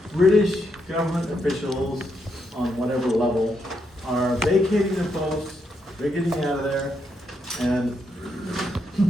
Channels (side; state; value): both; normal; correlation 0.80